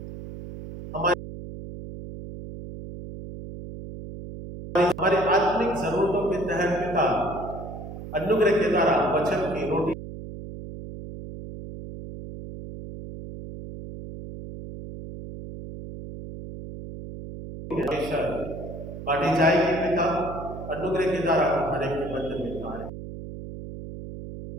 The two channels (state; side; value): noise; right; hum, 11 dB below the sound